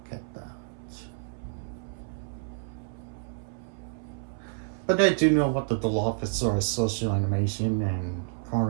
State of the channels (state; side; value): silent; left; 58 dB below the other